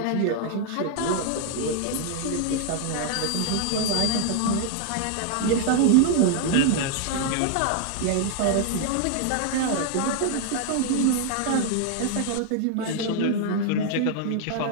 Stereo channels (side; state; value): both; different; correlation 0.00